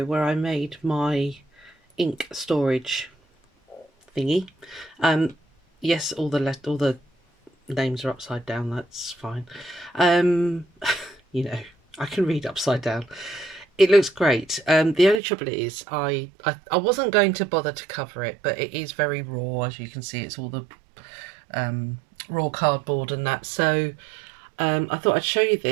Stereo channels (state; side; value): drops out; left; at 15.2 s